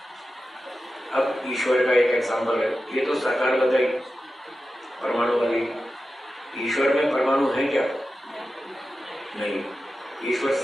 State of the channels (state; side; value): normal; both; correlation 0.92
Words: अब ईश्वर का एक एग्जाम्पल है, ये तो साकार बताई परमाणु वाली। ईश्वर में परमाणु है क्या? नहीं। ईश्वर